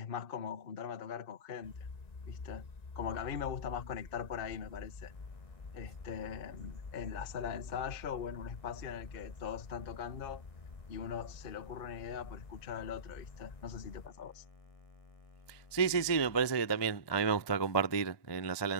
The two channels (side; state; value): right; late; 1.2 ms